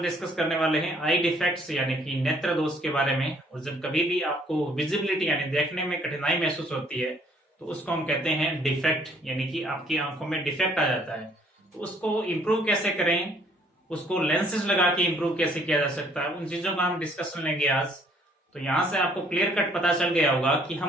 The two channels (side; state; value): both; normal; correlation 0.62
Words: डिस्कस करने वाले हैं आई डिफेक्ट्स यानी कि नेत्र दोष के बारे में। और जब कभी भी आपको विजिबिलिटी यानी देखने में कठिनाई महसूस होती है तो उसको हम कहते हैं डिफेक्ट, यानी कि आपकी आंखों में डिफेक्ट आ जाता है। तो उसको इम्प्रूव कैसे करें, उसको लेंसेज लगा के इम्प्रूव कैसे किया जा सकता है, उन चीजों का हम डिस्कशन लेंगे आज। तो यहाँ से आपको क्लियर कट पता चल गया होगा कि